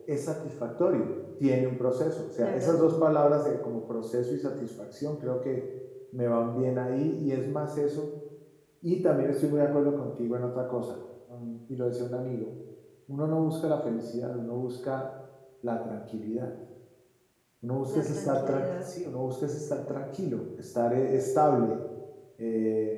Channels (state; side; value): identical; both; correlation 1.00